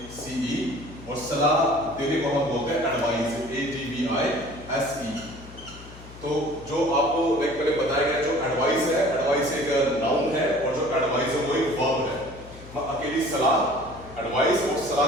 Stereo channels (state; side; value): noise; left; hum, 18 dB below the sound